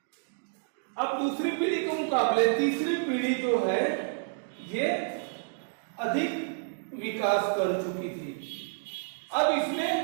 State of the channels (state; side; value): silent; left; digital silence